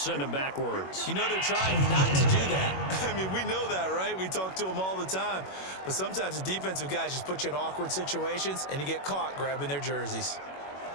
him backwards. You know they're trying not to do that. I mean, we know that, right? We talk to them all the time. But sometimes the defensive guys just put you in awkward situations, and you get caught grabbing their jerseys.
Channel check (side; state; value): right; late; 21 ms